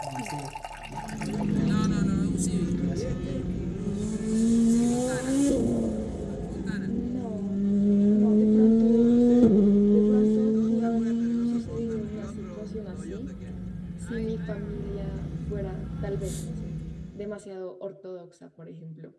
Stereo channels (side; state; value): both; identical; correlation 1.00